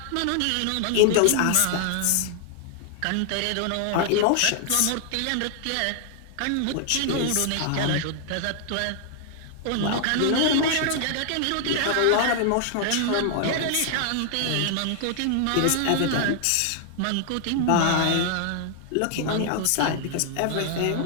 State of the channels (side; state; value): both; different; correlation 0.00